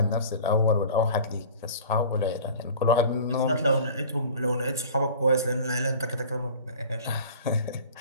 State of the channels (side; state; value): both; inverted; correlation -0.43